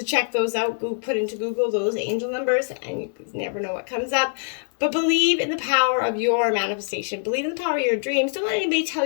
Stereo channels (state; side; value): silent; right; digital silence